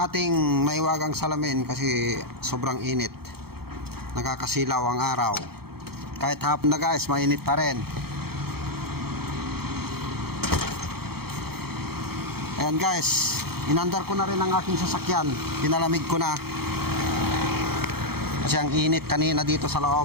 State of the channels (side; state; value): left; late; 0.95 ms